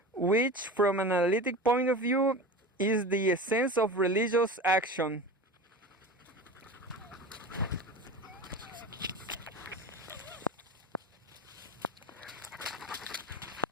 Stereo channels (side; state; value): both; normal; correlation 0.31